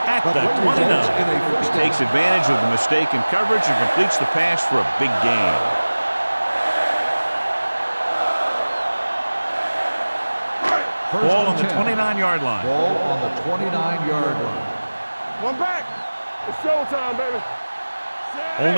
at the 29. He takes advantage of the mistake in coverage and completes the pass for a big gain. Ball on the 29-yard line. Ball on the 29-yard line. One back. It's showtime, baby.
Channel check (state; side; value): inverted; both; correlation -1.00